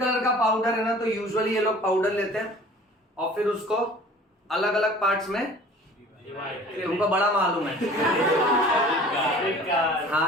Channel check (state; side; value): normal; both; correlation 0.47